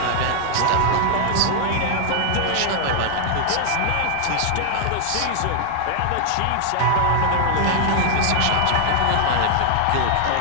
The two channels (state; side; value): different; both; correlation 0.00